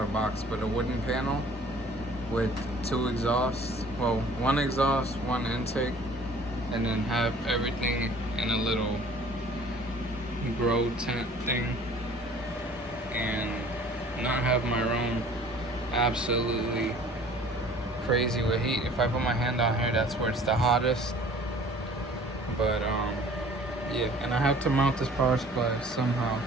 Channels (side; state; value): both; normal; correlation 0.51